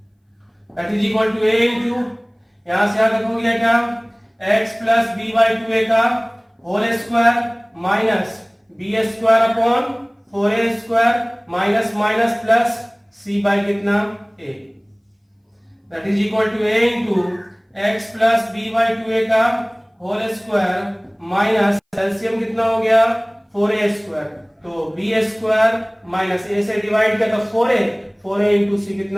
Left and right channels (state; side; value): identical; both; correlation 1.00